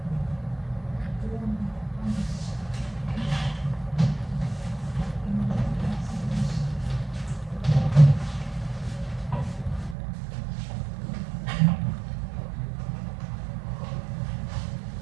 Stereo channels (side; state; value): left; drops out; at 10.0 s